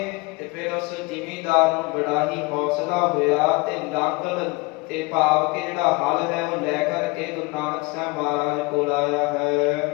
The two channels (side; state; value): right; quieter; 25.6 dB